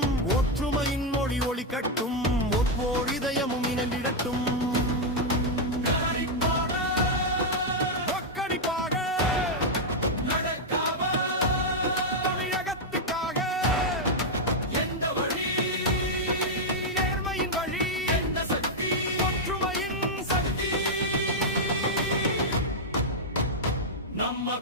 ஒற்றுமையின் மொழி ஒளிக்கட்டும், ஒவ்வொரு இதயமும் இணைந்திடட்டும். நம்ம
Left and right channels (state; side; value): normal; both; correlation -0.01